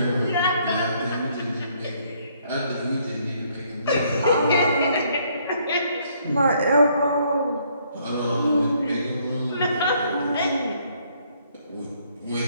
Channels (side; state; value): both; inverted; correlation -0.67